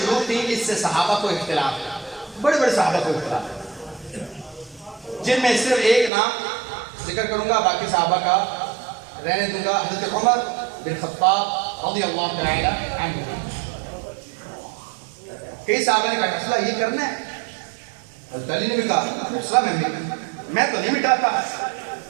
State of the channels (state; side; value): drops out; left; at 6.1 s